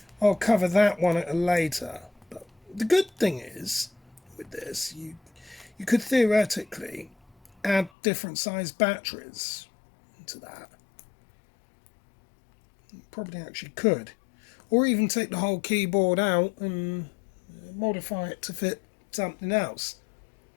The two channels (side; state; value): right; drops out; at 7.9 s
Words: I'll cover that one at a later. But the good thing is, with this, you could theoretically add different size batteries into that. You probably actually could. Or even take the whole keyboard out and modify it to fit something else.